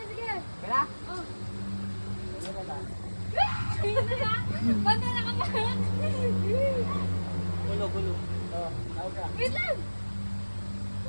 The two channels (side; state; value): both; inverted; correlation -1.00